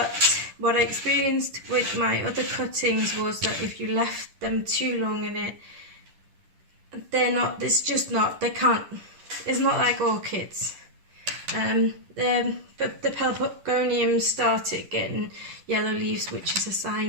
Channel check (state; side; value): late; left; 10 ms